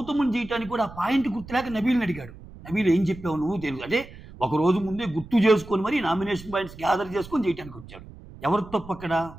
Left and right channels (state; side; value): noise; right; rumble, 17 dB below the sound